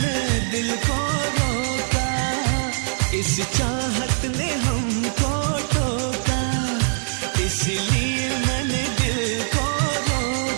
दिल को रोका। इस चाहत ने हमको टोका, इसलिए मैंने दिल को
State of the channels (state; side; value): silent; left; 64 dB below the other